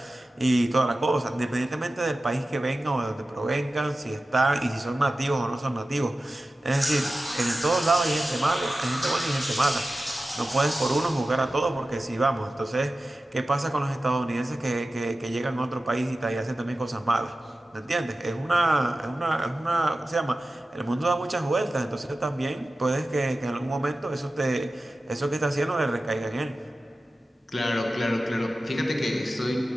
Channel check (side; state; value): both; normal; correlation 0.95